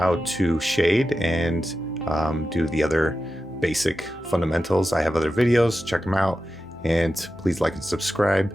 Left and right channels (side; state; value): both; normal; correlation 0.92